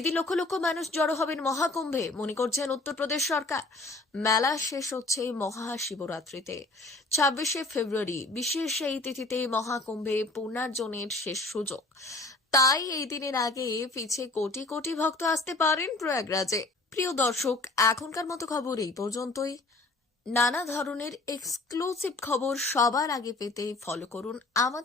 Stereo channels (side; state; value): right; quieter; 3.1 dB